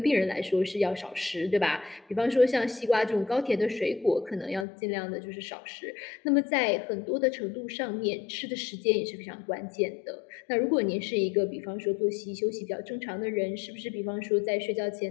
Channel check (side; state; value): right; drops out; at 4.7 s